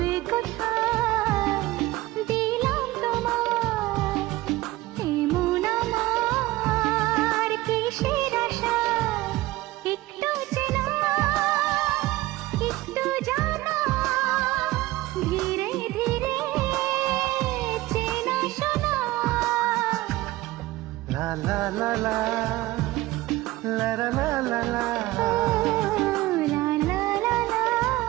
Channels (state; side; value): quieter; left; 18.1 dB